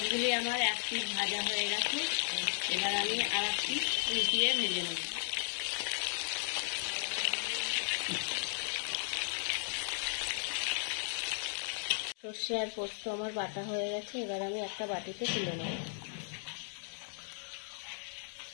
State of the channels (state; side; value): silent; right; digital silence